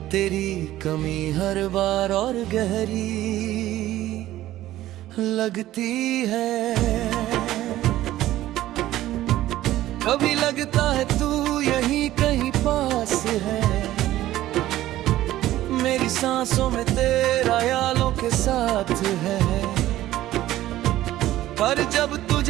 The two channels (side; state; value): left; quieter; 14.6 dB